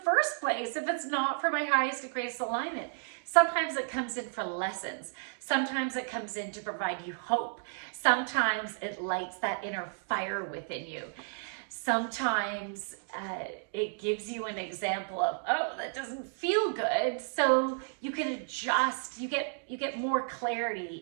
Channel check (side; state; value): left; silent; digital silence